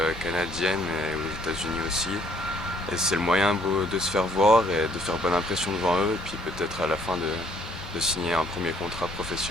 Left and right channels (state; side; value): normal; both; correlation 0.64